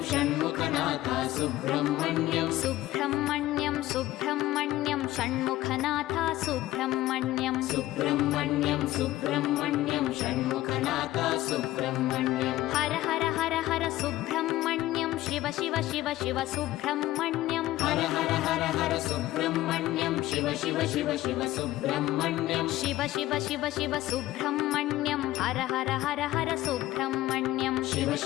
Shanmukhanath Subrahmanyam Subrahmanyam Subrahmanyam Shanmukhanath Subrahmanyam Subrahmanyam Subrahmanyam Shanmukhanath Subrahmanyam Har Har Har Har Subrahmanyam Shiva Shiva Shiva Shiva Subrahmanyam Har Har Har Har Subrahmanyam Shiva Shiva Shiva Shiva Subrahmanyam Shiva Shiva Shiva Shiva Subrahmanyam Har Har Har Har Subrahmanyam Shiva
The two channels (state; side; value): quieter; right; 15.8 dB